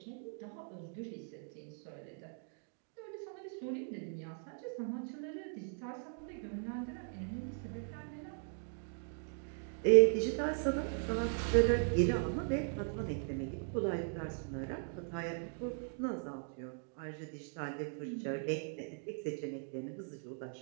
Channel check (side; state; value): left; silent; 52 dB below the other